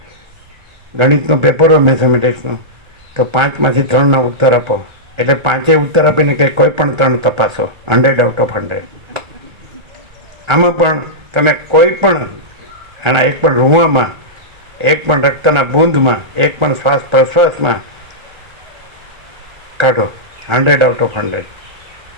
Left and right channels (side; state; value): left; late; 1.4 ms